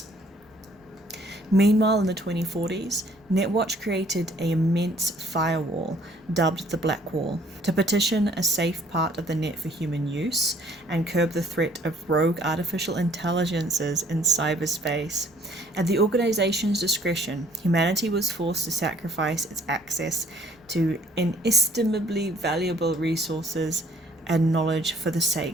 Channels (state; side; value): normal; both; correlation 0.60